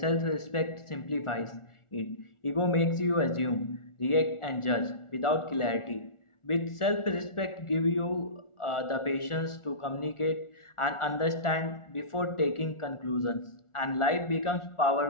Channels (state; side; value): late; right; 1.4 ms